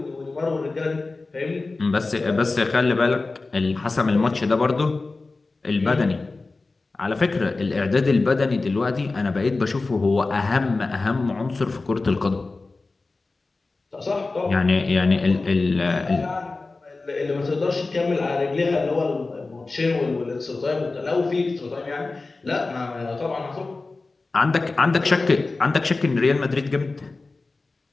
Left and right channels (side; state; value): right; quieter; 3.6 dB